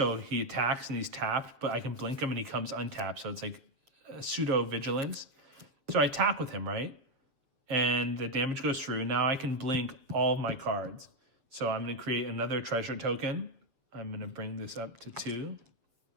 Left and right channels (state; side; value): late; left; 7.6 ms